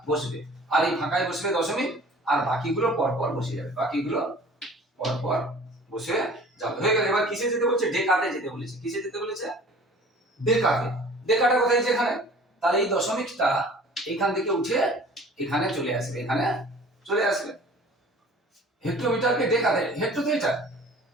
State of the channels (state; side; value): normal; both; correlation 0.47